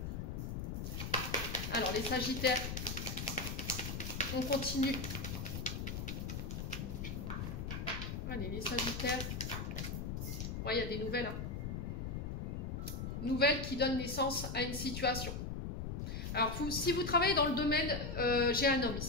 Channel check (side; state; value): left; noise; rumble, 4 dB below the sound